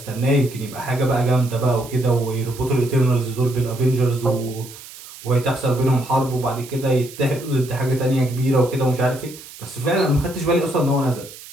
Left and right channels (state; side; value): noise; right; hiss, 17 dB below the sound